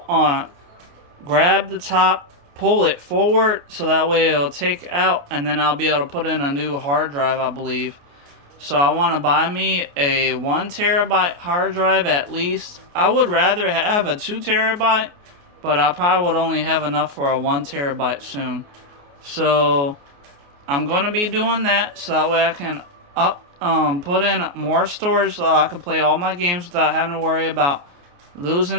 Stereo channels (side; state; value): left; late; 28 ms